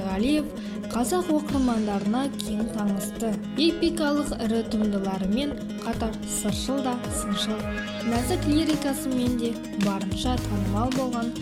қазақ оқырмандарына кең танысты. Эпикалық ірі туындыларымен қатар сыршыл да сыншыл, нәзік лирикасымен де барынша танымал болған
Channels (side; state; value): both; identical; correlation 1.00